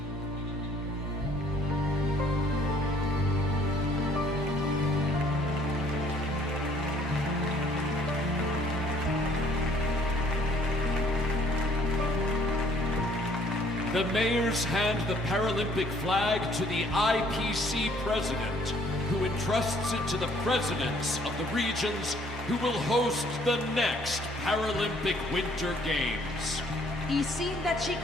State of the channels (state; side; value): normal; both; correlation 0.61